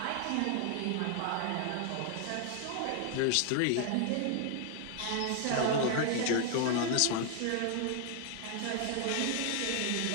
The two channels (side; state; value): both; different; correlation 0.00